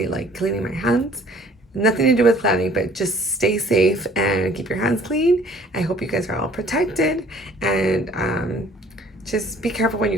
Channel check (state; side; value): normal; both; correlation 0.55